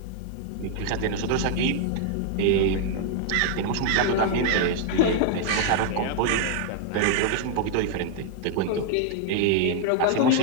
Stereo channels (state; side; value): different; both; correlation 0.00